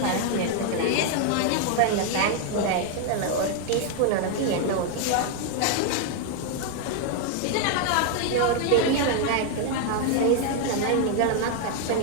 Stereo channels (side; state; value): both; different; correlation 0.00